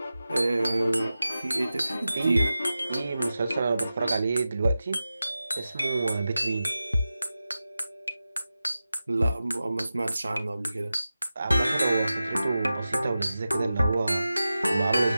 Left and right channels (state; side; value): inverted; both; correlation -0.93